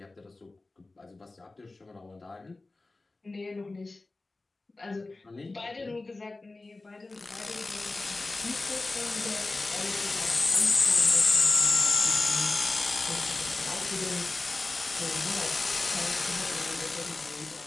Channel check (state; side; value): quieter; right; 3.2 dB